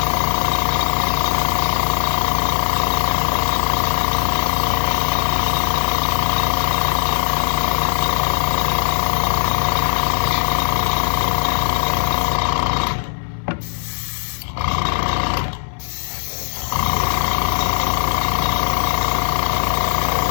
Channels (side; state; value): right; silent; 59 dB below the other